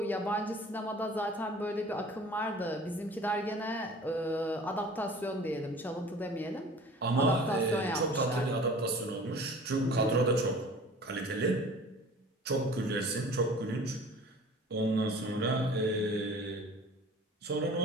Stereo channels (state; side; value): normal; both; correlation 0.45